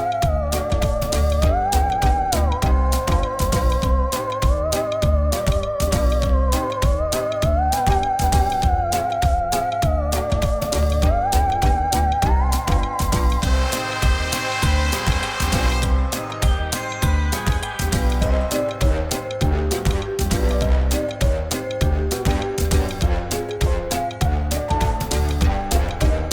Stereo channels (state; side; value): identical; both; correlation 1.00